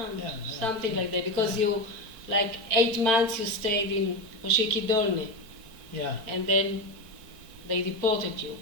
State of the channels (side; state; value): left; late; 4.5 ms